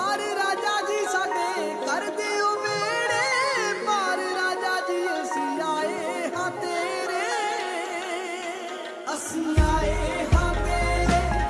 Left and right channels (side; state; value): both; identical; correlation 1.00